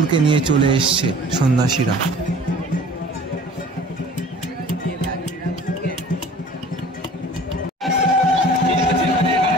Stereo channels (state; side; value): normal; both; correlation 0.47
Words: নিয়ে চলে এসছে সন্ন্যাসীরা।